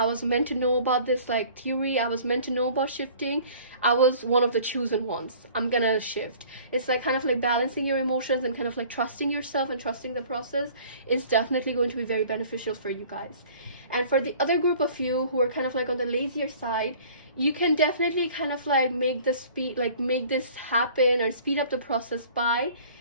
was meant to know about this like theory. I was meant to know about shifting. I was one of the chosen ones. I'm gonna shift. It's like kind of like balancing your emotions and kind of like trusting yourself and trusting the process is definitely going to be very beneficial for you guys. And for the other group of you who are kind of like on the lazier side, you can definitely kind of like make this happen or speed up the process by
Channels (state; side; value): inverted; both; correlation -0.49